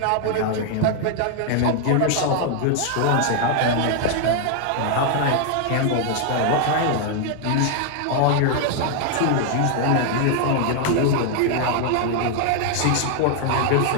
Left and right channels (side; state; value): both; different; correlation 0.00